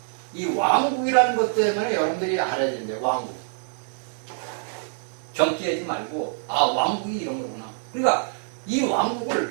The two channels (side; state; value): left; silent; 62 dB below the other